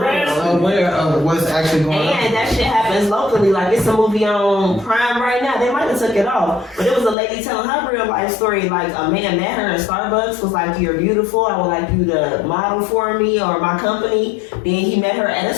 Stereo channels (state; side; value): drops out; right; at 7.2 s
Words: Aware of what's actually going on. And that shit happens locally. Like, it's a movie on Prime right now. They might have took it off. But it was a lady telling her real life story. Like, a man met her in Starbucks, was like, "You're beautiful. I would like you to model for me or my company." Then he met her at a